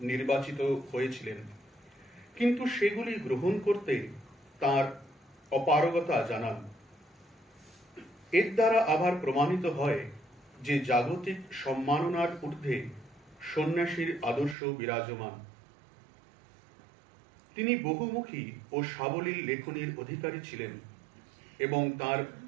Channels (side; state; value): left; drops out; at 14.6 s